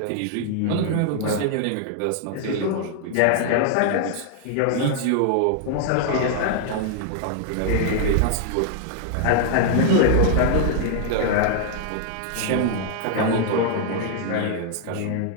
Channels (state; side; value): different; both; correlation 0.00